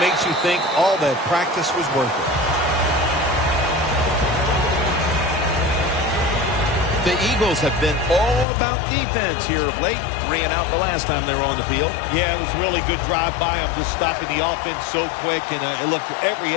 you think all that practice was worth it. The Eagles have been all about defense here of late. 3 and out the last time they were on the field. Yeah, it was a really good drive by them, just stopping the offense so quick, and it looked every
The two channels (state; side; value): drops out; right; at 8.5 s